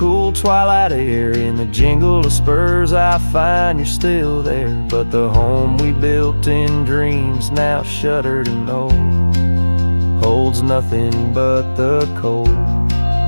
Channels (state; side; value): inverted; both; correlation -1.00